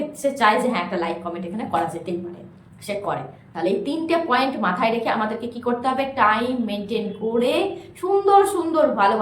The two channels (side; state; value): both; identical; correlation 1.00